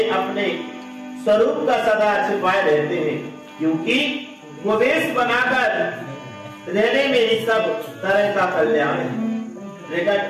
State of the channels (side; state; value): both; identical; correlation 1.00